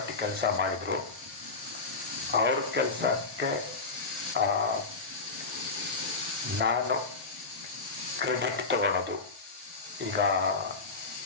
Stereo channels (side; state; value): right; quieter; 4.0 dB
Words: ಕೆಲಸ ಮಾಡಿದರು, ಅವ್ರ ಕೆಲಸಕ್ಕೆ ನಾನು ಕ್ರೆಡಿಟ್ ತಗೊಳ್ಳೋದು. ಈಗ